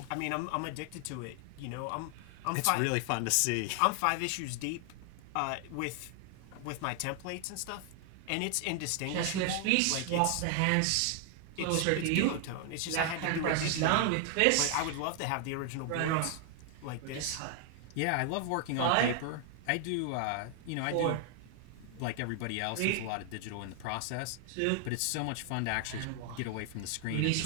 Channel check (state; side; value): different; both; correlation 0.00